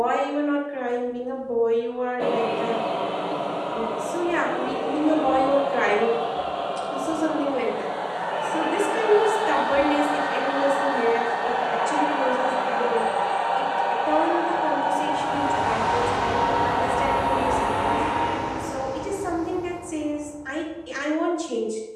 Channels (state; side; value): identical; both; correlation 1.00